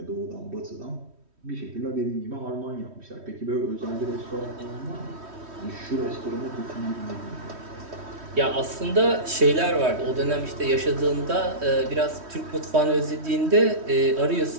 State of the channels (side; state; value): left; late; 3.1 ms